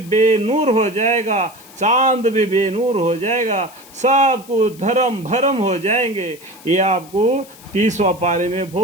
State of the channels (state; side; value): noise; left; hiss, 22 dB below the sound